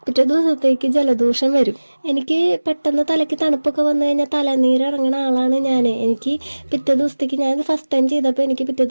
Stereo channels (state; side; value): inverted; both; correlation -1.00